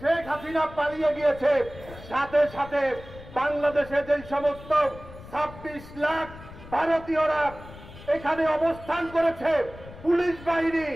হাসিনা পালিয়ে গিয়েছে, সাথে সাথে বাংলাদেশে যে সমস্ত 26 লাখ ভারতীয়রা এখানে অবস্থান করেছে, পুলিশ বাহিনী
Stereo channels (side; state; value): left; noise; rumble, 17 dB below the sound